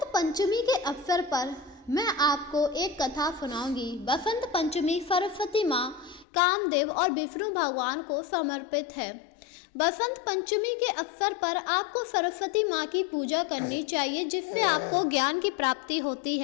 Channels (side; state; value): right; drops out; at 6.2 s